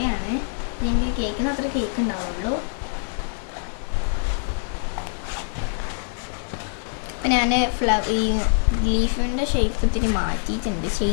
എനിക്ക് കേൾക്കുന്ന അത്ര കേക്ക് ഉണ്ടാവുള്ളൂ. ഞാൻ ഈ ലീഫിൻ്റെ ഷേപ്പ് ഇത്തിരി മാറ്റിയിട്ടുണ്ട്,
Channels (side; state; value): right; silent; digital silence